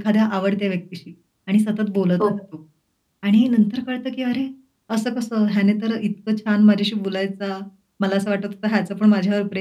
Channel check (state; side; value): identical; both; correlation 1.00